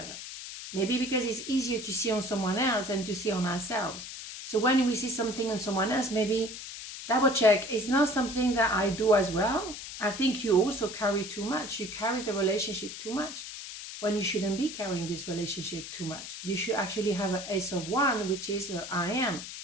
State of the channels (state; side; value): noise; left; hiss, 10 dB below the sound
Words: Maybe because it's easier to see on someone else than to see on ourselves. So when we see something on someone else, maybe double check, it's not something that I do as well. I think you also carry too much. You carry the relationship too much when you shouldn't be carrying this relationship too much. You should actually have an S of 1, which is the I am.